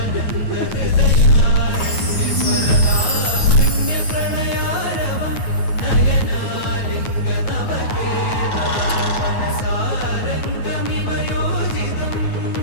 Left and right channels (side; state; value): right; late; 9.3 ms